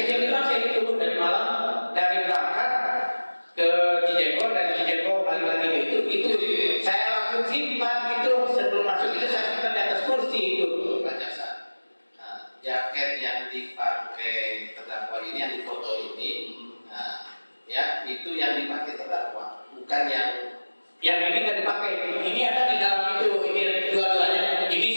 ini saya itu dari Malang, dari berangkat ke Cijego, dari Cijego balik lagi ke itu saya langsung simpan itu sebelum masuk itu saya simpan di atas kursi itu. Pak Jaksa, nah, jaket yang dipakai terdakwa ini, yang difoto ini, nah, ya itu yang dipakai terdakwa, bukan yang ini nggak dipakai. Ini ada di dalam itu. Ini dua-duanya. Ini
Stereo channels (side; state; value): both; inverted; correlation -1.00